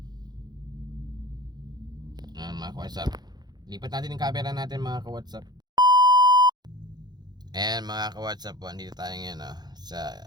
Yan mga ka-WhatsApp. Lipat natin yung camera natin mga ka-WhatsApp. Ayan mga ka-WhatsApp po. Andito tayo ngayon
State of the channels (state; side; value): late; left; 0.20 ms